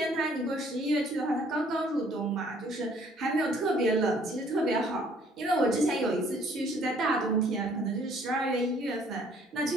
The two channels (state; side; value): normal; both; correlation 0.60